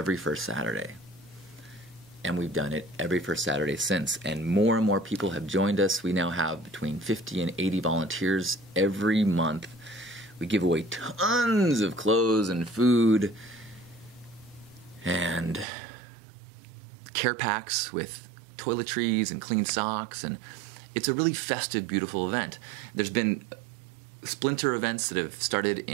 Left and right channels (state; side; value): drops out; left; at 15.7 s